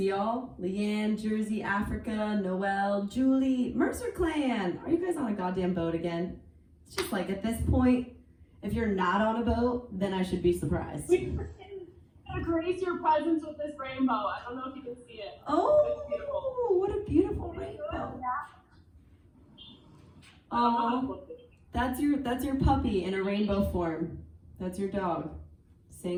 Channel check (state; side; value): identical; both; correlation 1.00